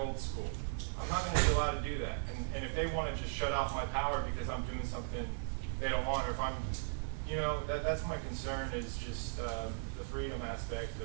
old school. I'm not going to be allowed to do that. And if they want to just shut off my power because I'm doing something they don't want, or if I'm, that's my concern, is just the freedom aspect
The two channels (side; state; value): left; silent; digital silence